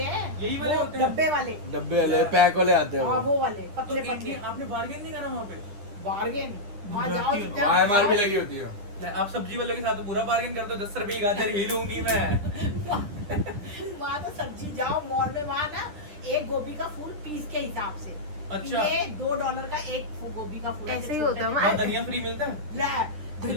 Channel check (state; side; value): late; left; 10 ms